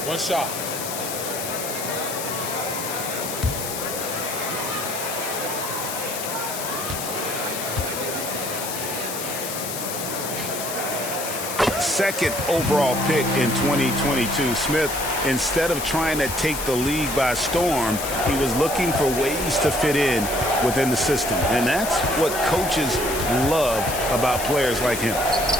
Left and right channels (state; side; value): noise; left; hiss, 6 dB below the sound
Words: One shot. Second overall pick in 2022, Smith, instead of trying to take the league by storm, he was looking for ways to fit in within the system. And that's what coaches love about players like him.